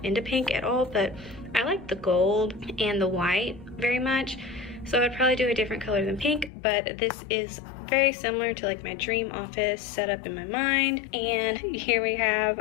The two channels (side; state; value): right; drops out; at 6.5 s